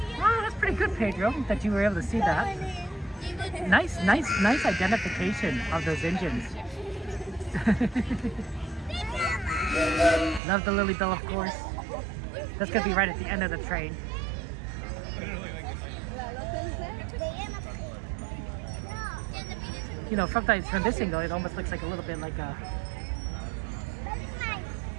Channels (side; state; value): left; drops out; at 10.4 s